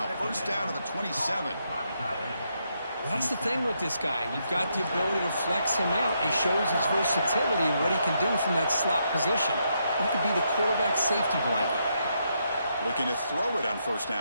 First down to the 27. Well, that's the thing with this guy. You've got the ability to flex him out. He shows his versatility and what he can do from that slot position. He could be the quarterback safety blanket. Looking to throw it on first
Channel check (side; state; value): both; inverted; correlation -0.79